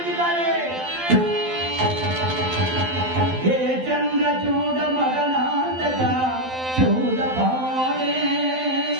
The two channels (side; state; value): left; late; 12 ms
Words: ಹೇ ಚಂದ್ರಚೂಡ ಮದನಾಂತಕ ಚೂಡ ಪಾಣೆ,